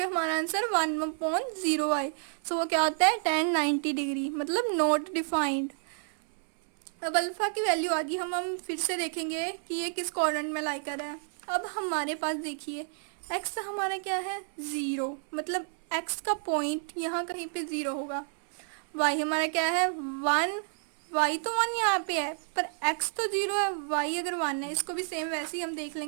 हमारा आंसर 1 अपॉन 0 आए। सो वो क्या होता है tan 90 डिग्री, मतलब नॉट डिफाइंड। अब अल्फा की वैल्यू आ गई, हम फिर से देखेंगे कि ये किस क्वाड्रेंट में लाई कर रहा है। अब हमारे पास देखिए x हमारा क्या है 0, मतलब x का पॉइंट यहाँ कहीं पे 0 होगा। y हमारा क्या है 1, y तो 1 यहाँ पे है पर x तो 0 है, y अगर 1 है। इसको भी सेम वैसे ही हम देख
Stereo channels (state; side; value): silent; left; 58 dB below the other